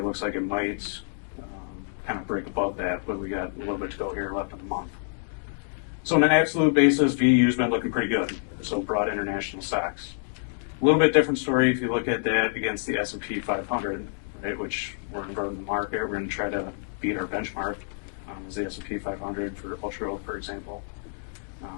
looks like it might kind of break above that, but we got a little bit to go here left in the month. So on an absolute basis, VU's been looking pretty good. So broad international stocks. A little bit different story if you look at that against the S&P 500, right, which we're in the market. We're going to try to beat our benchmark as the S&P 500 for ultra growth, for example.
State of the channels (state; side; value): silent; right; digital silence